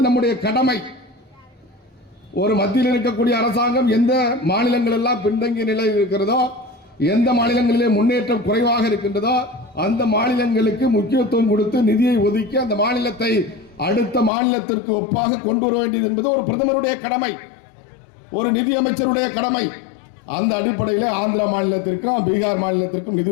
நம்முடைய கடமை. ஒரு மத்தியில் இருக்கக்கூடிய அரசாங்கம் எந்த மாநிலங்கள் எல்லாம் பின்தங்கிய நிலையில் இருக்கிறதோ, எந்த மாநிலங்களிலே முன்னேற்றம் குறைவாக இருக்கின்றதோ அந்த மாநிலங்களுக்கு முக்கியத்துவம் கொடுத்து நிதியை ஒதுக்கி அந்த மாநிலத்தை அடுத்த மாநிலத்திற்கு ஒப்பாக கொண்டு வர வேண்டியது என்பது ஒரு பிரதமருடைய கடமை, ஒரு நிதி அமைச்சருடைய கடமை. அந்த அடிப்படையில் ஆந்திரா மாநிலத்திற்கும் பீகார் மாநிலத்திற்கும் நிதி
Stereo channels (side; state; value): right; drops out; at 14.3 s